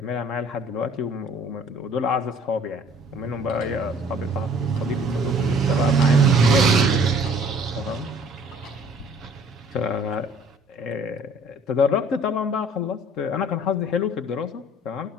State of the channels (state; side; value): normal; both; correlation 0.54